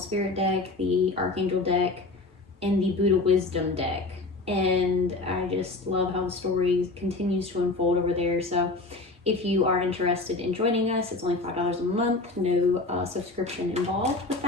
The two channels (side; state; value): right; quieter; 3.2 dB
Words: deck, the Archangel deck, and the Buddha Wisdom deck. And I just love how the story continues to unfold over there. So if you are interested in joining us, it's only $5 a month, no subscription involved with